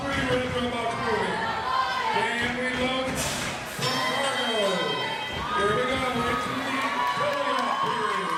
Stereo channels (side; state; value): both; identical; correlation 1.00